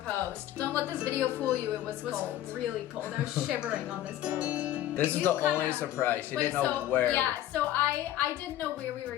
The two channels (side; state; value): right; quieter; 13.1 dB